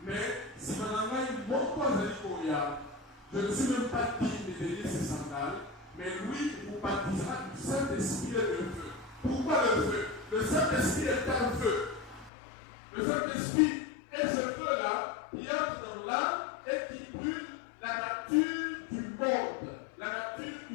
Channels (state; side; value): drops out; right; at 12.3 s